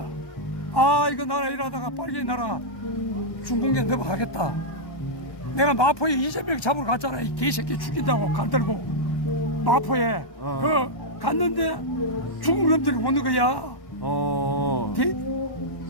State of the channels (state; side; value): late; right; 1.1 ms